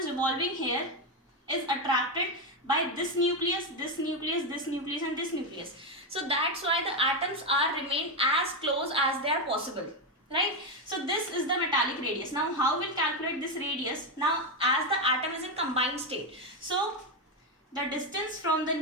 revolving here is attracted by this nucleus, this nucleus, this nucleus and this nucleus. So that's why the atoms are remain as close as they are possible, right. So this is the metallic radius. Now how we'll calculate this radius? Now as the atom is in combined state, so the distance from the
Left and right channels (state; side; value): normal; both; correlation 0.08